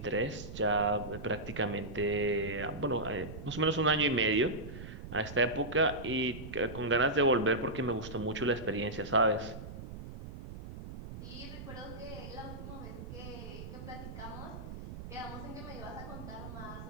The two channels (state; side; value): noise; right; rumble, 11 dB below the sound